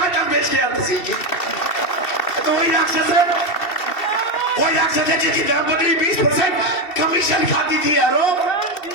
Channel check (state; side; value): late; right; 2.7 ms